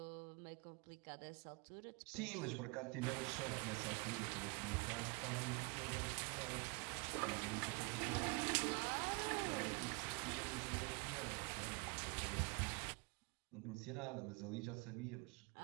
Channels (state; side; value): quieter; left; 29.8 dB